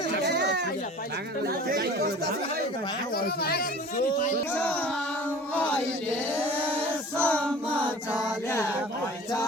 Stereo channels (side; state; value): both; normal; correlation 0.43